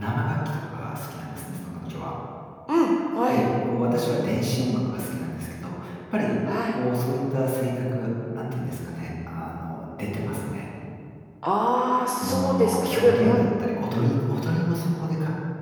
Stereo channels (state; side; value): identical; both; correlation 1.00